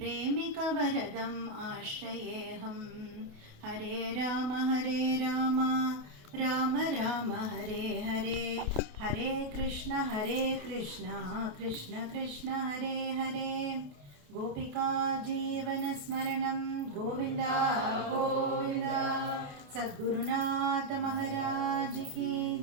आश्रयेऽहं। हरे राम राम राम हरे हरे, हरे कृष्ण कृष्ण कृष्ण हरे हरे। गोपिका जीवनस्मरणं गोविन्दा गोविन्दा। सद्गुरुनाथ महाराज की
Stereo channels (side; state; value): left; late; 28 ms